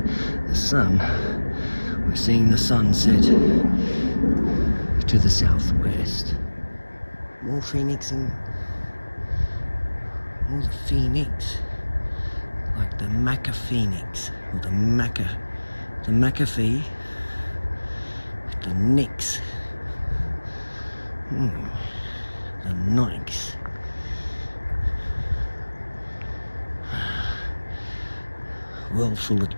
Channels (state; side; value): inverted; both; correlation -1.00